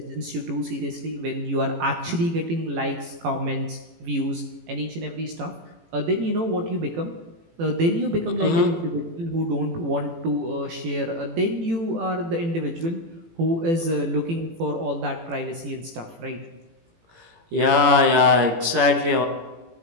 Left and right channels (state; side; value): late; left; 18 ms